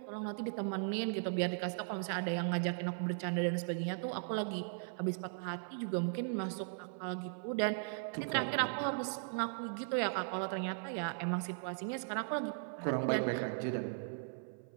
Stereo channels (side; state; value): left; silent; 52 dB below the other